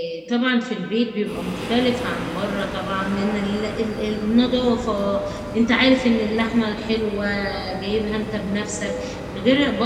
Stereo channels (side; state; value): both; identical; correlation 1.00